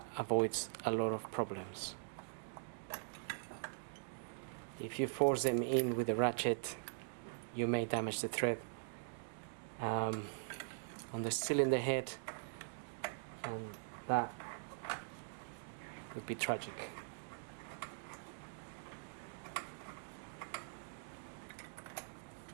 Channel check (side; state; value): left; silent; digital silence